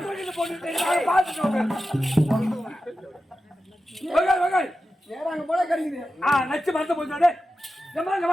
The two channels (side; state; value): both; normal; correlation 0.92